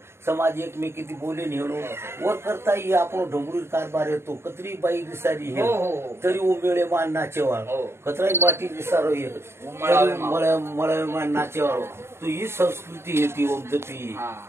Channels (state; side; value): late; left; 0.12 ms